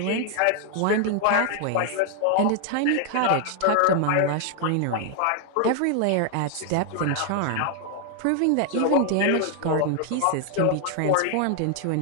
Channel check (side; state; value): both; different; correlation 0.00